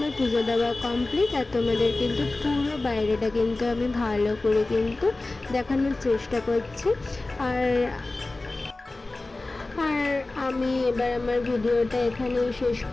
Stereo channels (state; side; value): quieter; right; 3.1 dB